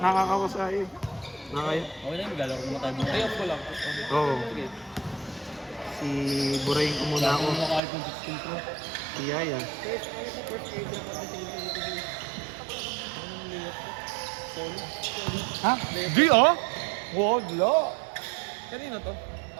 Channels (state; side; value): drops out; left; at 7.8 s